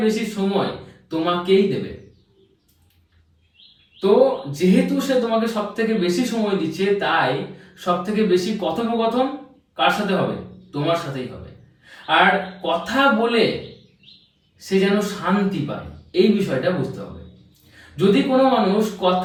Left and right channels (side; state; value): both; identical; correlation 1.00